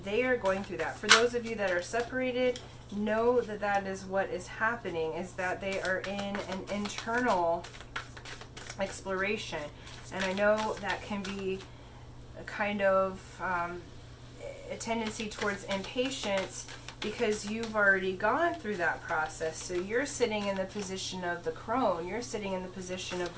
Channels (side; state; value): both; identical; correlation 1.00